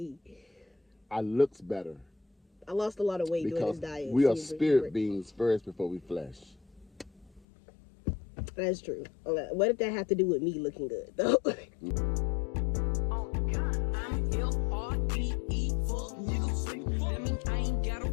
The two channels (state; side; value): drops out; right; at 7.5 s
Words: I looks better. I lost a lot of weight doing this diet. We are spirit beings first before we flesh. That's true. What did that have to do with me looking good, though?